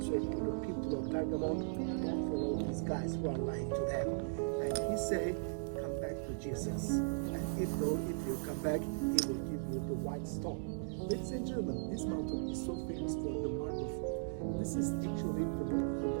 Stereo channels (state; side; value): silent; left; digital silence